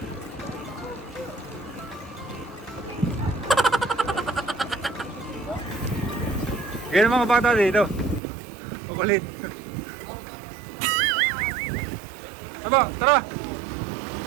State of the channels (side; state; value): left; drops out; at 8.2 s